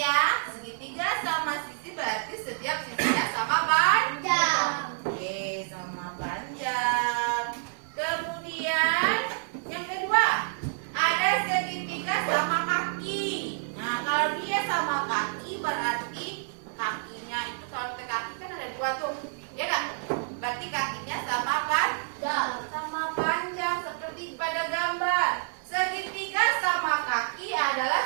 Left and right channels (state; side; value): silent; left; 59 dB below the other